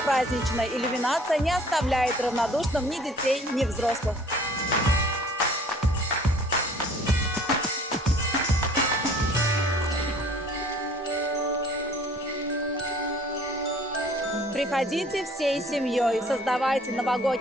праздничная иллюминация не оставляет равнодушным ни детей, ни взрослых. Приходите всей семьей, создавайте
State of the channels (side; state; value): both; normal; correlation 0.53